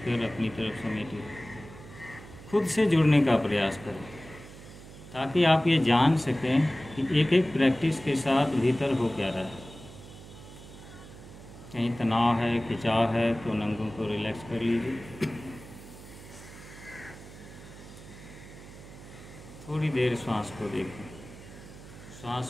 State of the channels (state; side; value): noise; right; hum, 17 dB below the sound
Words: अपनी तरफ समेटिए। खुद से जुड़ने का प्रयास करें ताकि आप ये जान सकें कि एक एक प्रैक्टिस के साथ भीतर हो क्या रहा है। कहीं तनाव है, खिंचाव है तो नंगों को रिलैक्स कर लीजिए। थोड़ी देर श्वास को देखें। श्वास